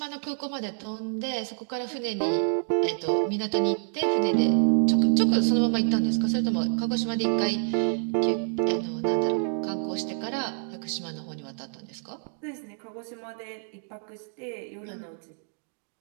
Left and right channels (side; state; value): left; silent; digital silence